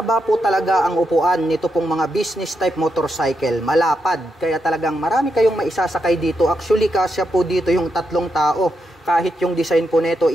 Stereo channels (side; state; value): both; normal; correlation 0.83